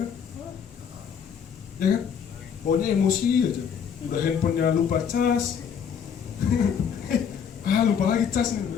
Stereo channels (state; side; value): quieter; right; 7.4 dB